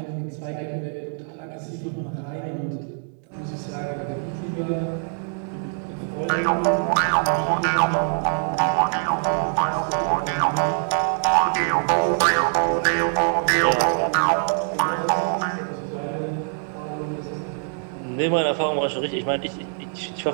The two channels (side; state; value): left; silent; 58 dB below the other